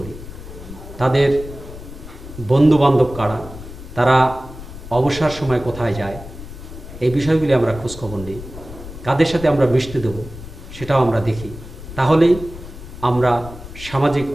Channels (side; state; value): left; noise; rumble, 13 dB below the sound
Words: তাদের বন্ধুবান্ধব কারা, তারা অবসর সময় কোথায় যায়, এই বিষয়গুলি আমরা খোঁজখবর নিই। কাদের সাথে আমরা মিশতে দেব সেটাও আমরা দেখি। তাহলেই আমরা সামাজিক